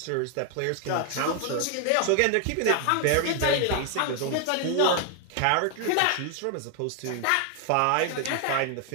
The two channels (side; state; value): both; different; correlation 0.00